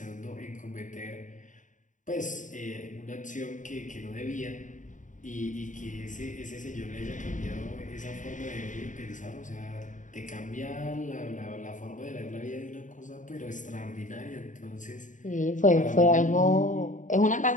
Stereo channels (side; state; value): right; late; 0.37 ms